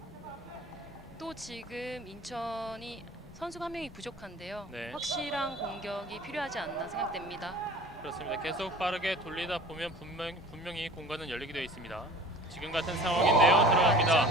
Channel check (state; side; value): normal; both; correlation 0.43